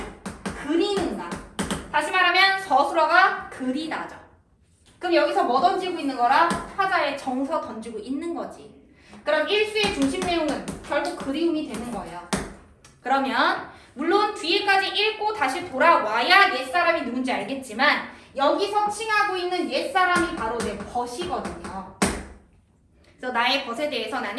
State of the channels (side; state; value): both; identical; correlation 1.00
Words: 그리는가. 다시 말하면 서술어가 그리다죠. 그럼 여기서 뭐 던지고 있는 거라? 타자에 정서 던지고 있는 거지. 그럼 1수의 중심 내용은 결국 그리움이 되는 거예요. 그러면 물론 뒤에까지 읽고 다시 돌아와야 옛사람이 누군지 알겠지만 여기서 칭하고 있는 옛사람이 바로 내 벗이거든요. 그래서 나의 벗에 대해서